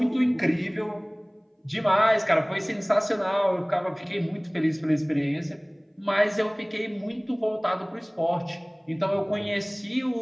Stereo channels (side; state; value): both; identical; correlation 1.00